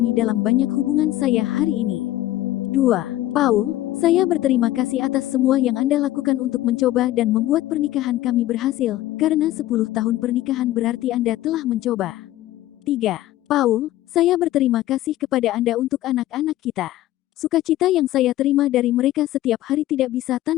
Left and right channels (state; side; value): quieter; right; 14.9 dB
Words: dalam banyak hubungan saya hari ini. 2. Paul, saya berterima kasih atas semua yang Anda lakukan untuk mencoba dan membuat pernikahan kami berhasil, karena 10 tahun pernikahan berarti Anda telah mencoba. 3. Paul, saya berterima kasih kepada Anda untuk anak-anak kita. Sukacita yang saya terima dari mereka setiap hari tidak bisa